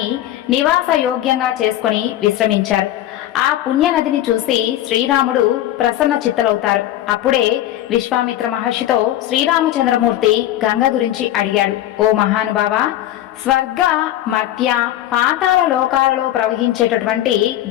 నివాస యోగ్యంగా చేసుకుని విశ్రమించారు. ఆ పుణ్యనదిని చూసి శ్రీరాముడు ప్రసన్న చిత్తలవుతారు. అప్పుడే విశ్వామిత్ర మహర్షితో శ్రీరామచంద్రమూర్తి గంగ గురించి అడిగాడు. ఓ మహానుభావ, స్వర్గ మర్త్య పాతాళ లోకాలలో ప్రవహించేటటువంటి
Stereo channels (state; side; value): quieter; right; 13.2 dB